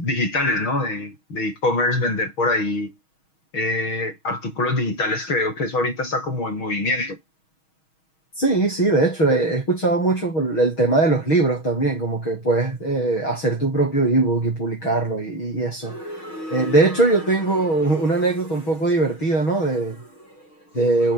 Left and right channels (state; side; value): late; right; 6.3 ms